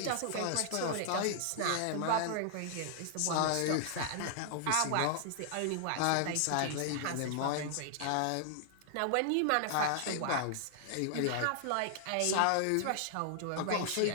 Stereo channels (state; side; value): different; both; correlation -0.01